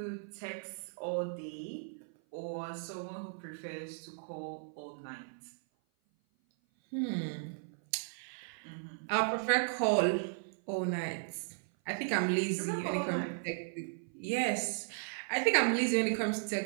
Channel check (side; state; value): left; silent; 54 dB below the other